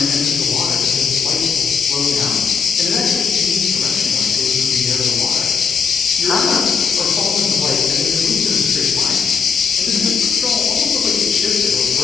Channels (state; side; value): quieter; right; 5.8 dB